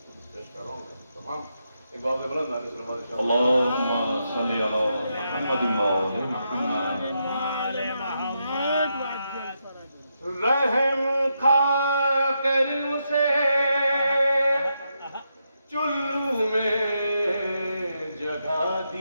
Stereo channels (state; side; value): inverted; both; correlation -0.83